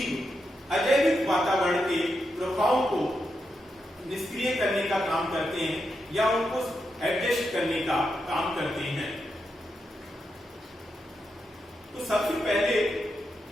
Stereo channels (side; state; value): both; normal; correlation 0.85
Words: अजैविक वातावरण के प्रभावों को निष्क्रिय करने का काम करते हैं या उनको एडजस्ट करने का काम करते हैं। तो सबसे पहले